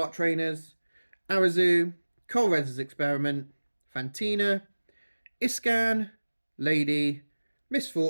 trainers, Arazu, Colreza's Experiment, Fantina, Iscan, Lady,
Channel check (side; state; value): both; inverted; correlation -1.00